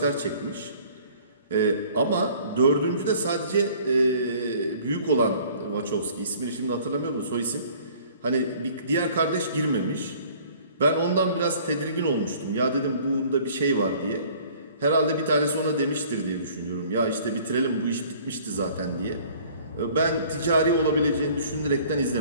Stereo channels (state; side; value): inverted; both; correlation -0.53